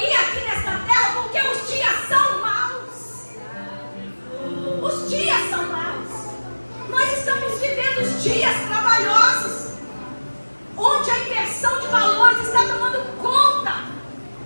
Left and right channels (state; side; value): inverted; both; correlation -1.00